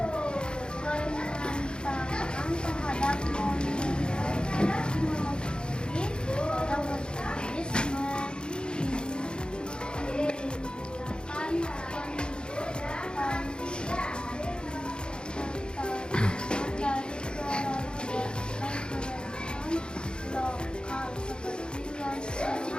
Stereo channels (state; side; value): late; right; 0.050 ms